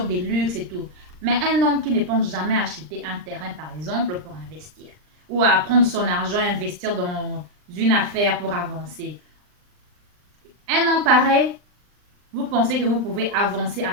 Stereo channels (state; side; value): late; left; 39 ms